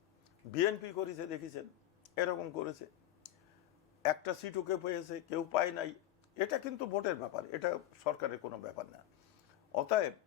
বিএনপি করেছে, দেখেছেন এরকম করেছে। একটা সিটও কেউ পেয়েছে, কেউ পায় নাই। এটা কিন্তু ভোটের ব্যাপার, এটা সরকারের কোনো ব্যাপার না। অতএব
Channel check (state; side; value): quieter; right; 13.3 dB